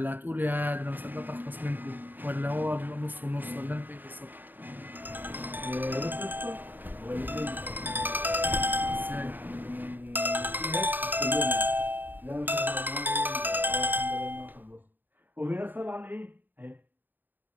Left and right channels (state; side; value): late; left; 0.090 ms